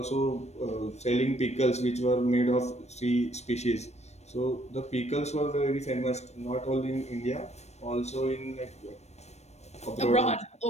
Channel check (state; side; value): late; right; 0.32 ms